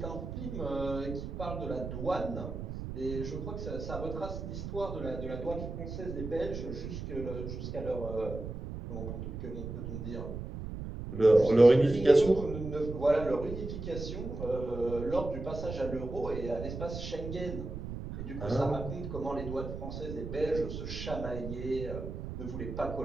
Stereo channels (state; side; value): noise; right; rumble, 7 dB below the sound